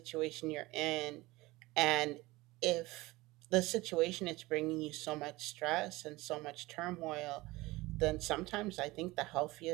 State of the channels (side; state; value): left; quieter; 20.6 dB